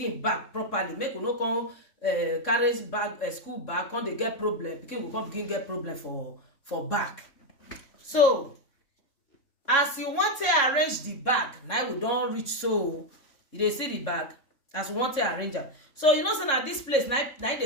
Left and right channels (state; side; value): late; right; 3.6 ms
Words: back properly. Make you no come carry bag school bag, come dey get problem. Pikin go come begin get problem for back. So as you want to arrange the bag, now we don reach. So you dey see the bag as you want to arrange am. So you know say na this place now